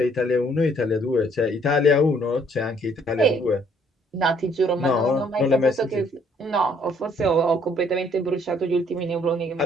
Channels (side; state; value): both; normal; correlation 0.64